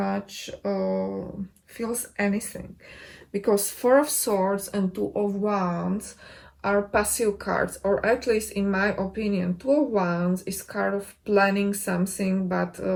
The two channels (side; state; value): both; identical; correlation 1.00